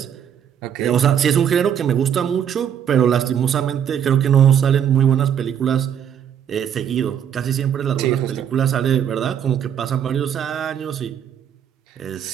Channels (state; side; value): quieter; left; 8.9 dB